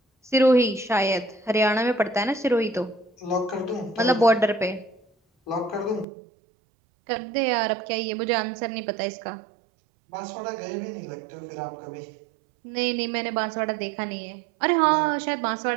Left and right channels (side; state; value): left; drops out; at 6.1 s